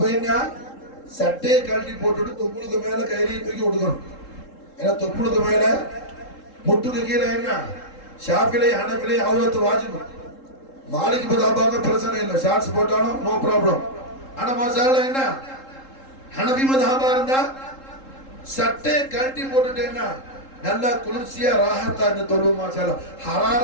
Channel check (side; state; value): right; late; 3.7 ms